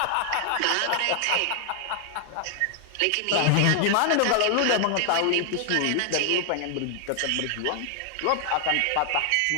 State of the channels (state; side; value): different; both; correlation 0.00